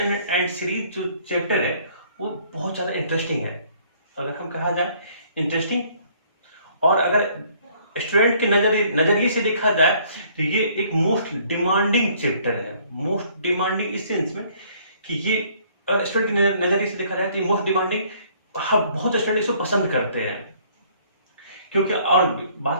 series जो चैप्टर है वो बहुत ज़्यादा इंटरेस्टिंग है। अगर हम कहा जाए इंटरेस्टिंग, और अगर स्टूडेंट के नजरिए से देखा जाए तो ये एक मोस्ट डिमांडिंग चैप्टर है। मोस्ट डिमांडिंग इस सेंस में कि ये स्टूडेंट के नजरिए से देखा जाए तो ये मोस्ट डिमांडिंग, बहुत स्टूडेंट इसको पसंद करते हैं। क्योंकि और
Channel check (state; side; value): inverted; both; correlation -0.61